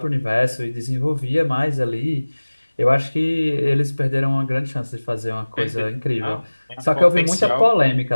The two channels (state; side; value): inverted; both; correlation -1.00